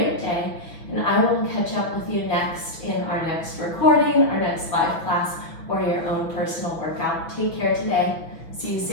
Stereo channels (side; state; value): right; late; 6.3 ms